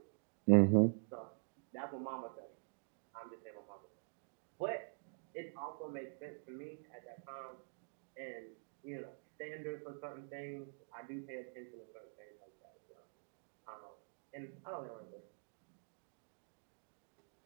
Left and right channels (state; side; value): silent; left; digital silence